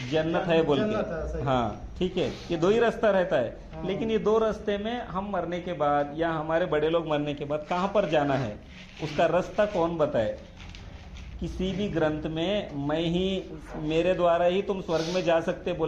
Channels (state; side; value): identical; both; correlation 1.00